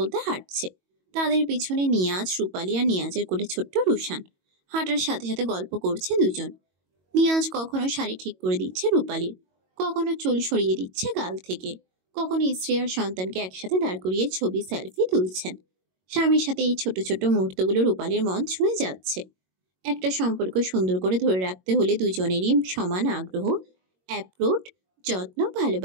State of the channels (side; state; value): left; late; 22 ms